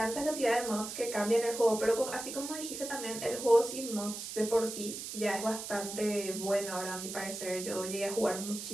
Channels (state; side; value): noise; right; hiss, 7 dB below the sound